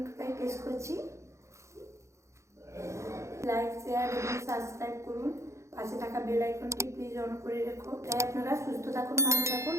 তাই টেস্ট করছি। লাইক শেয়ার এবং সাবস্ক্রাইব করুন, পাশে থাকা বেল আইকনটি প্লিজ অন করে রেখো। তাই আপনারা সুস্থ থাকুন, ভালো থাকুন।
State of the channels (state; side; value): late; left; 0.14 ms